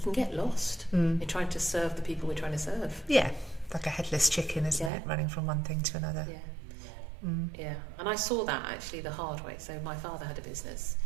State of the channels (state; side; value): drops out; left; at 4.9 s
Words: get lost in trying to serve the people we're trying to serve. Yeah, like a headless chicken, isn't it? Running from one thing to another. Yeah. Yeah, and I saw that actually the hard way. So my father had a business,